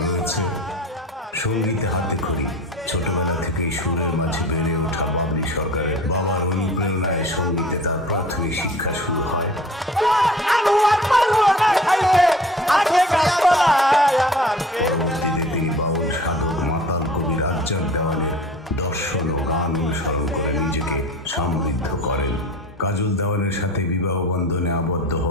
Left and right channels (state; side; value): normal; both; correlation 0.42